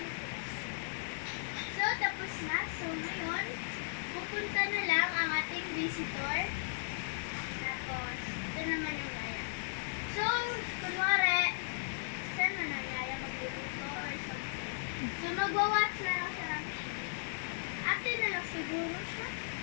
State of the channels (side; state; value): right; silent; digital silence